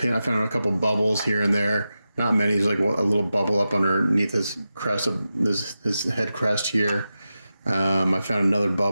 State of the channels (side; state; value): both; inverted; correlation -0.92